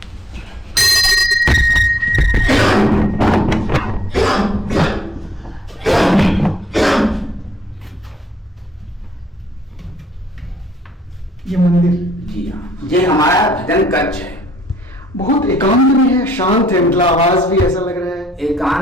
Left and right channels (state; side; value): normal; both; correlation 0.69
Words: ये मंदिर जी हाँ, ये हमारा भजन कक्ष है। बहुत एकांत में है, शांत है, मतलब आवाज भी ऐसा लग रहा है।